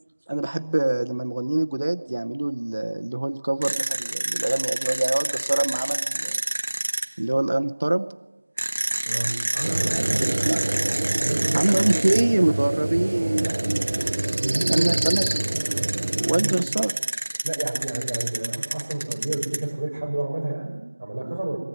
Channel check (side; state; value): both; inverted; correlation -1.00